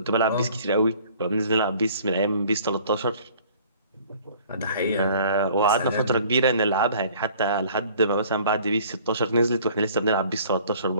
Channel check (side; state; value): both; inverted; correlation -0.53